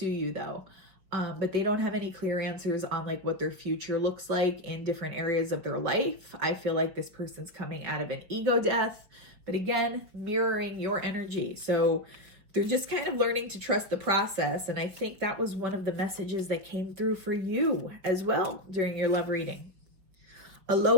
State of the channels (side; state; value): left; late; 5.2 ms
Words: you though. But they don't have any clear answers on like what their future looks like in different areas of their life. I feel like this person's coming out of an ego death. But again, mirroring your energy. So they're just kind of learning to trust the process. And I think that was one of the messages that came through for you as well during your love reading.